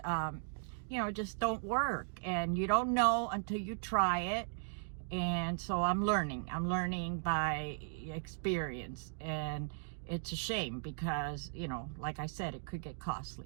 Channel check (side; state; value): left; silent; digital silence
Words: you know, just don't work, and you don't know until you try it. And so I'm learning by experience, and it's a shame because, you know, like I said, it could get